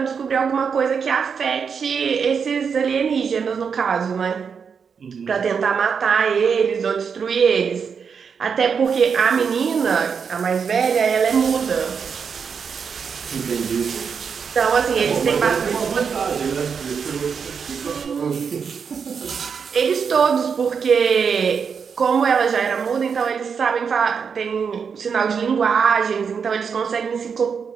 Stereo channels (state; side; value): quieter; left; 6.3 dB